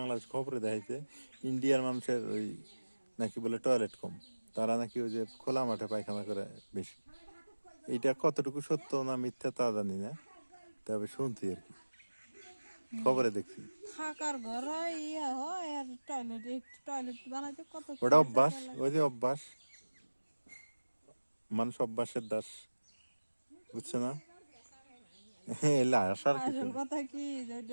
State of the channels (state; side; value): inverted; both; correlation -1.00